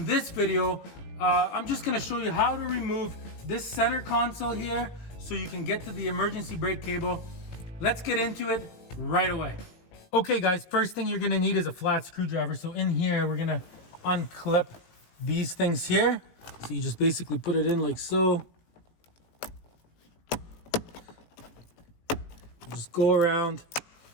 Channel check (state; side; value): late; right; 18 ms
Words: this video, I'm just gonna show you how to remove this center console here so you can get to the emergency brake cable. Let's get into it right away. Okay guys, first thing you're gonna need is a flat screwdriver. So in here, we're gonna unclip these things here. So you just basically put it in like so. Just go around